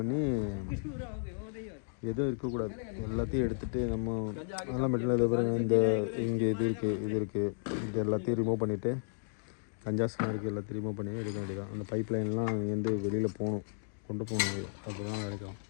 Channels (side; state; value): right; silent; digital silence